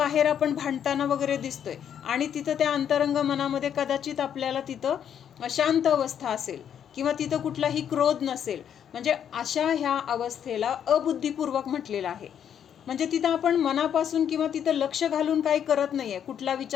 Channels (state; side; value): quieter; right; 8.9 dB